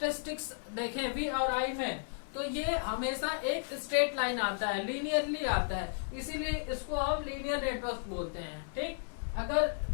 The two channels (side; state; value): right; silent; 55 dB below the other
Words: देखें V और I में, तो ये हमेशा एक स्ट्रेट लाइन आता है, लीनियरली आता है, इसीलिए इसको हम लीनियर नेटवर्क बोलते हैं। ठीक, अगर